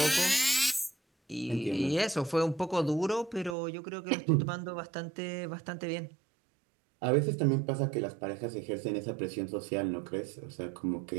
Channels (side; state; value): left; drops out; at 3.6 s